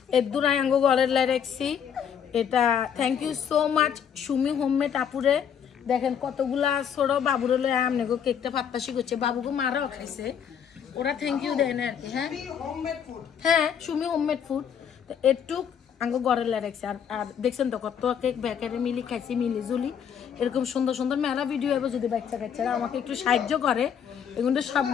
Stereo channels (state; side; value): quieter; right; 8.1 dB